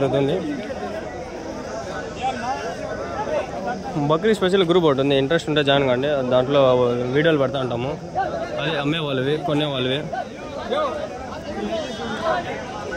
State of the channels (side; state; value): both; identical; correlation 1.00